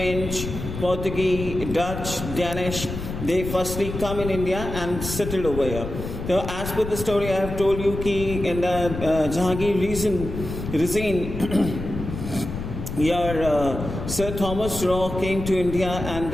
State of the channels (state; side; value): noise; left; rumble, 7 dB below the sound